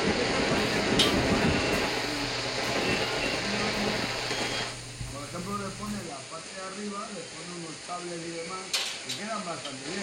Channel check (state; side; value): identical; both; correlation 1.00